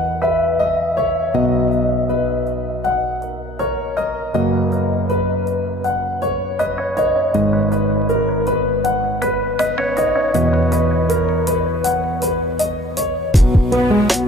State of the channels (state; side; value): normal; both; correlation 0.55